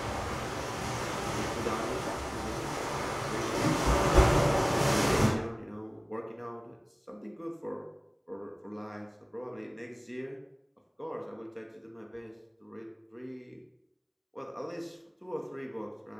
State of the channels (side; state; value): both; identical; correlation 1.00